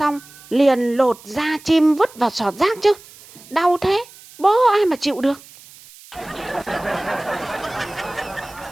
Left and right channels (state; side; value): noise; right; hiss, 21 dB below the sound